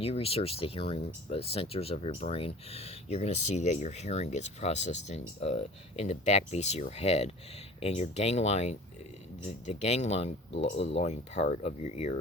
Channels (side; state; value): both; normal; correlation 0.43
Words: you research the hearing centers of your brain, you're going to see that your hearing gets processed in the back base of your head, and your ganglion, the ganglion part of your ear,